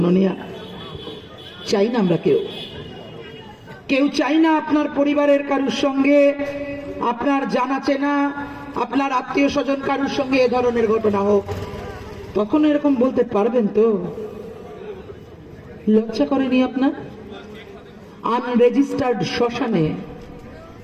চাই না আমরা কেউ চাই না আপনার পরিবারের কারুর সঙ্গে, আপনার জানা চেনা, আপনার আত্মীয় স্বজন কারুর সঙ্গে এ ধরনের ঘটনা হোক। তখন এরকম বলতে পারবেন তো? লজ্জা করেনি আপনার? আনরেজিস্টার্ড শ্মশানে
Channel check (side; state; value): both; identical; correlation 1.00